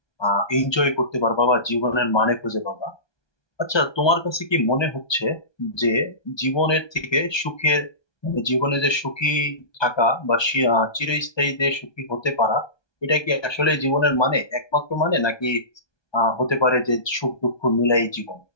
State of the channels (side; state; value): right; late; 1.2 ms